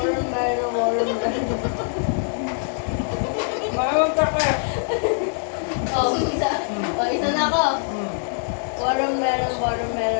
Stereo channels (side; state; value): right; silent; 63 dB below the other